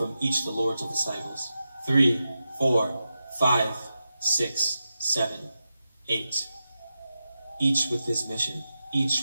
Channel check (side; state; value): both; inverted; correlation -0.90